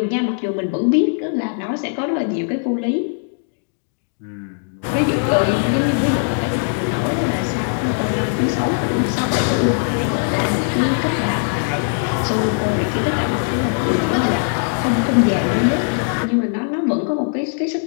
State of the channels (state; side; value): silent; right; digital silence